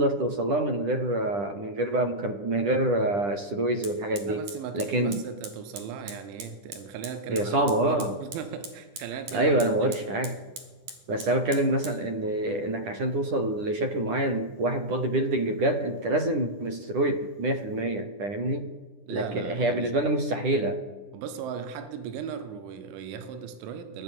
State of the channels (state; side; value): late; left; 10 ms